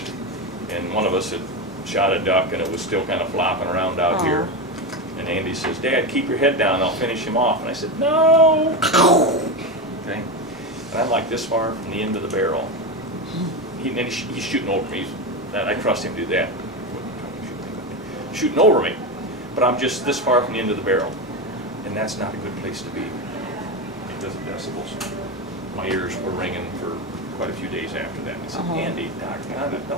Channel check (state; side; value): normal; both; correlation 0.16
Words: and one of us had shot a duck and it was still kind of flopping around out here. And Andy says, "Dad, keep your head down, I'll finish him off." And I said, "No!" Okay? And I'm like this far from the end of the barrel. He's shooting over me. I trust him to do that. Shooting over me. But I'm just this far from the end of the barrel. And that's not a good place to be because of decibels. My ears were ringing for quite a few days after that. I said, "Andy, doggone it,